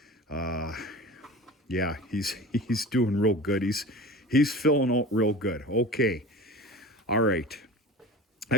Yeah, he's doing real good. He's filling out real good. Okay. All right.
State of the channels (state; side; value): normal; both; correlation 0.35